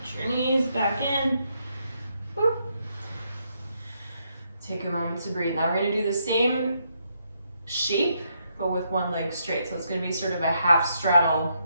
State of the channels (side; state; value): both; inverted; correlation -0.77